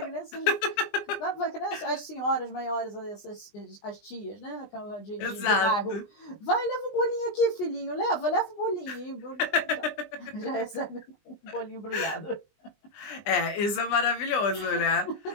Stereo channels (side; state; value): right; late; 20 ms